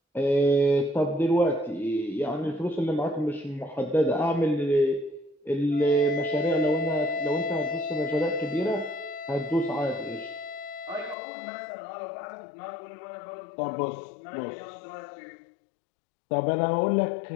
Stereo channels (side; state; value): right; drops out; at 11.2 s